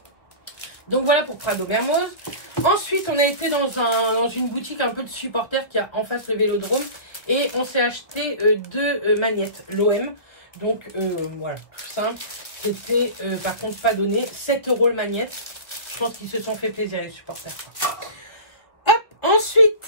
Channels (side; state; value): right; late; 1.6 ms